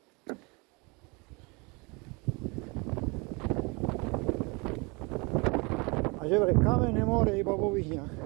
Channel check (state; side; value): quieter; left; 28.8 dB